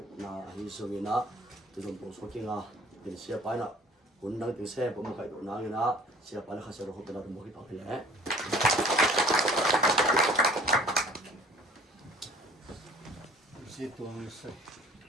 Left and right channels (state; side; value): normal; both; correlation 0.50